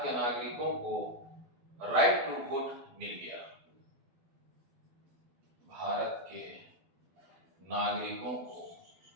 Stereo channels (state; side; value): late; left; 12 ms